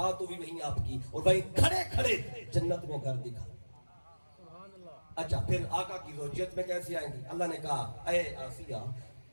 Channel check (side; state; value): both; inverted; correlation -1.00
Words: بھی وہیں آپ کی، اور وہیں کھڑے کھڑے جنت میں گھر دکھا۔ اچھا پھر آقا کی زوجیت میں کیسے آئیں گی؟ اللہ نے کہا اے آسیہ،